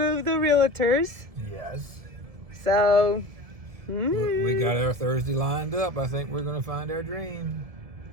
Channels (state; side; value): late; left; 1.7 ms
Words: of the realtors. Yes. So We got our Thursday lined up. I think we're going to find our dream.